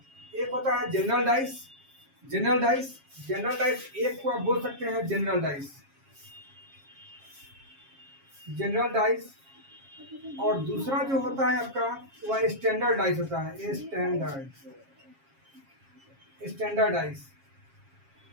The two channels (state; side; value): late; left; 7.4 ms